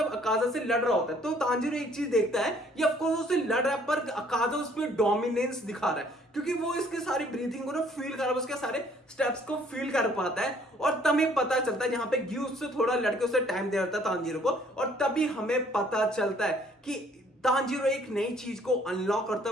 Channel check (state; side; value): normal; both; correlation 0.61